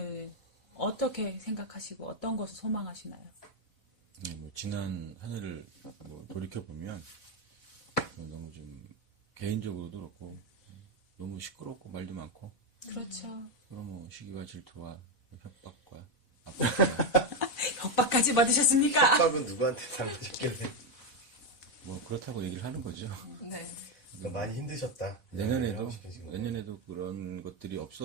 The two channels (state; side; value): late; right; 4.0 ms